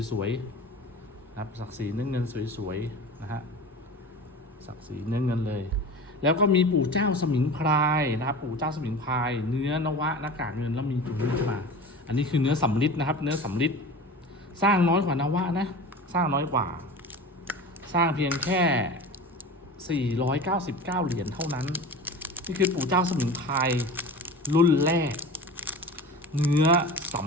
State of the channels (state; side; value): normal; both; correlation 0.34